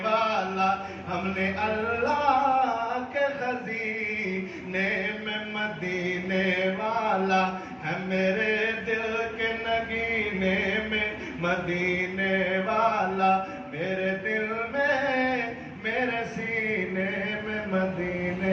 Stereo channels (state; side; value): identical; both; correlation 1.00